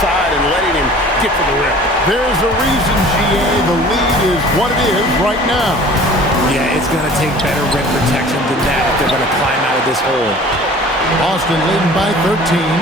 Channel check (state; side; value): normal; both; correlation 0.46